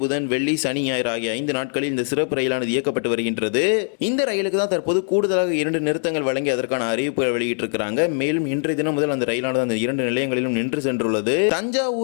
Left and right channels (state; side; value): silent; right; 56 dB below the other